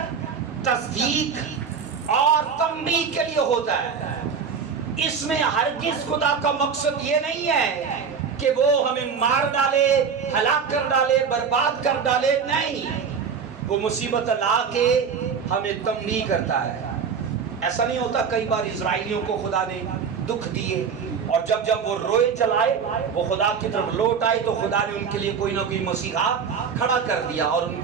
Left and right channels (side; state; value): left; quieter; 6.3 dB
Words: تصدیق اور تنبیہ کے لیے ہوتا ہے۔ اس میں ہرگز خدا کا مقصد یہ نہیں ہے کہ وہ ہمیں مار ڈالے، ہلاک کر ڈالے، برباد کر ڈالے، نہیں، وہ مصیبت لا کے ہمیں تنبیہ کرتا ہے۔ ایسا نہیں ہوتا کئی بار اسرائیلیوں کو خدا نے دکھ دیے اور جب وہ روئے چلائے وہ خدا کی طرف لوٹ آئے تو خدا نے ان کے لیے کوئی نہ کوئی مسیحا کھڑا کر دیا اور ان